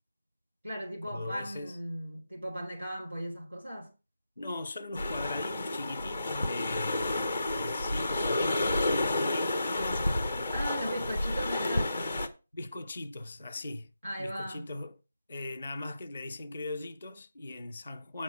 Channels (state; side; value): inverted; both; correlation -0.87